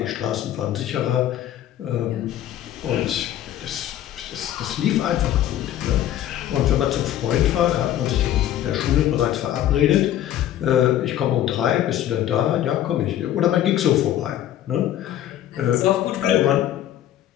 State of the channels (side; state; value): right; quieter; 12.0 dB